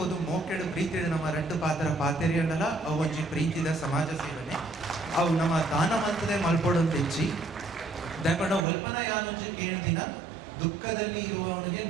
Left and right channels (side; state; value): left; drops out; at 8.7 s